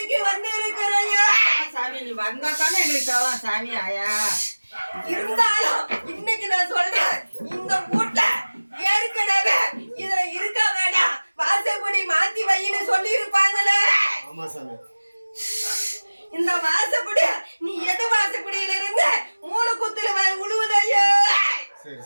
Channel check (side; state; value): both; inverted; correlation -1.00